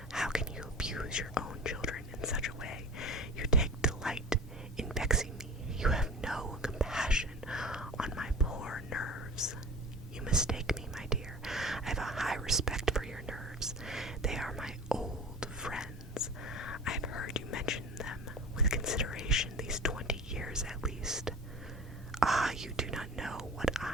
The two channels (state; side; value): normal; both; correlation 0.36